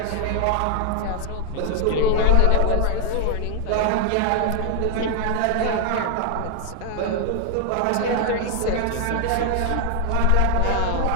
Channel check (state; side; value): different; both; correlation 0.00